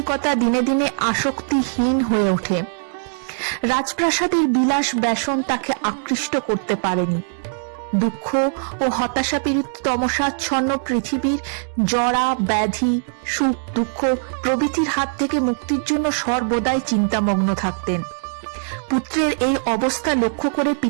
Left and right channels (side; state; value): left; silent; digital silence